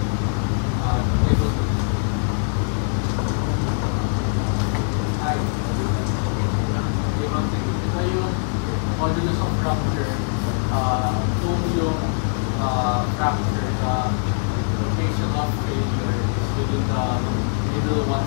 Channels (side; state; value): right; silent; 64 dB below the other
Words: Modulus of rupture, kung yung fracture, the location of failure is within the middle